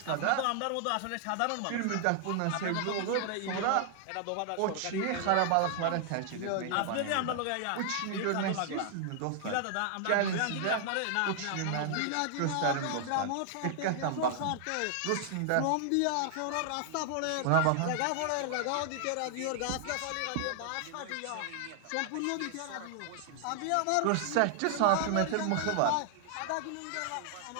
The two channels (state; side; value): different; both; correlation 0.00